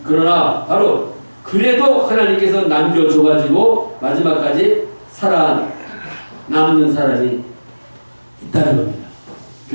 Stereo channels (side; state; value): both; inverted; correlation -1.00